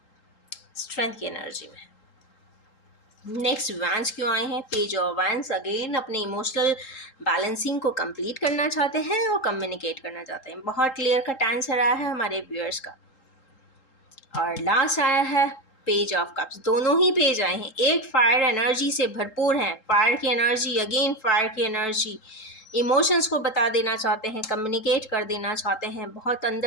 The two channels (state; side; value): late; right; 3.8 ms